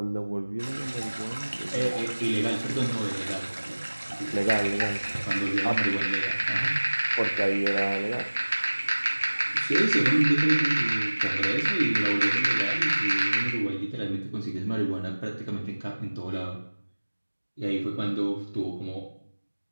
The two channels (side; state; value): both; inverted; correlation -1.00